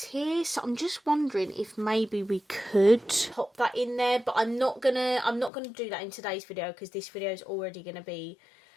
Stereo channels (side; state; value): right; drops out; at 5.5 s